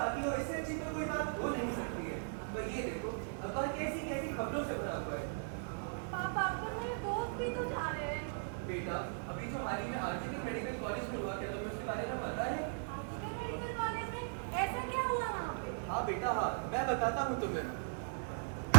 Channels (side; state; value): left; silent; 52 dB below the other